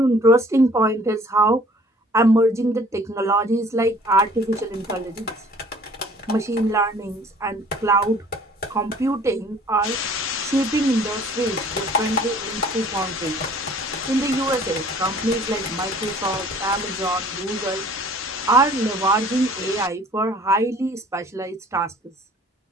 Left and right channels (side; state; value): both; normal; correlation 0.53